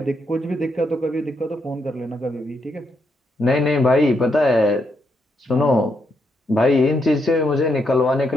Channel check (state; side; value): normal; both; correlation 0.79